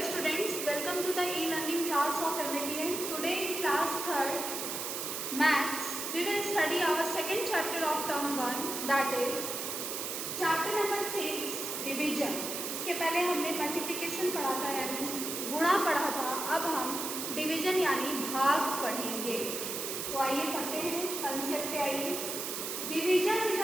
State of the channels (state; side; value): noise; right; hiss, 4 dB below the sound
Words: students, welcome to the e-learning class of MAPN. Today in class 3rd Maths, we will study our second chapter of term 1, that is chapter number 6, division. इसके पहले हमने multiplication पढ़ा था यानी गुणा पढ़ा था, अब हम डिवीजन यानी भाग पढ़ेंगे। तो आइए पढ़ते हैं कंसेप्ट पे आइए। Division is